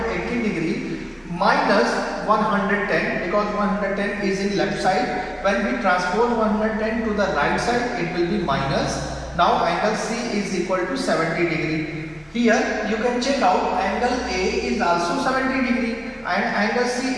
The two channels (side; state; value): both; identical; correlation 1.00